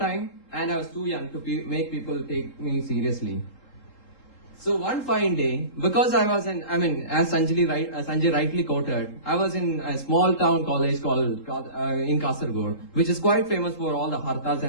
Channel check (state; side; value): late; right; 3.8 ms